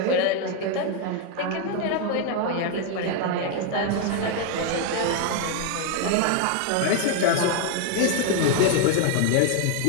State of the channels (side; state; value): both; different; correlation 0.01